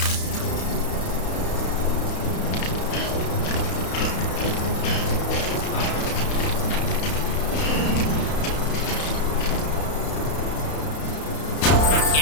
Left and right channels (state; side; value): late; right; 32 ms